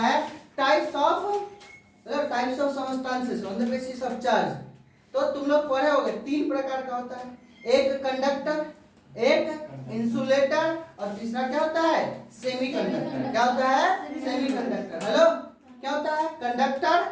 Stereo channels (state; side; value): identical; both; correlation 1.00